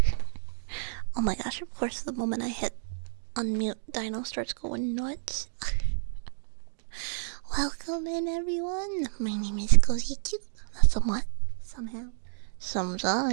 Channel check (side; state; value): left; silent; digital silence